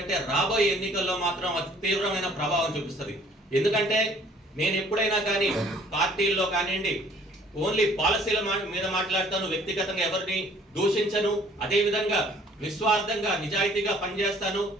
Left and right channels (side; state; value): both; normal; correlation 0.56